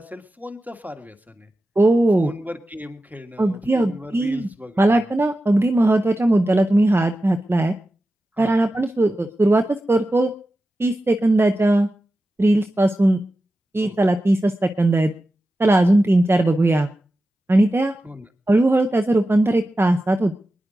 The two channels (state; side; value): normal; both; correlation 0.93